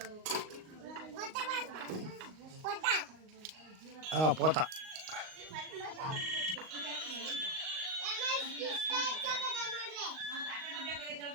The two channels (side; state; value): left; late; 38 ms